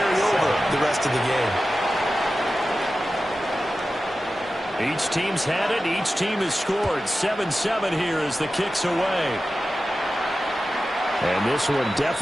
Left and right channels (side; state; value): both; normal; correlation 0.94